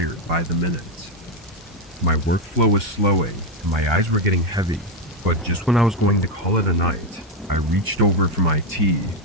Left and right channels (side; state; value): both; normal; correlation 0.05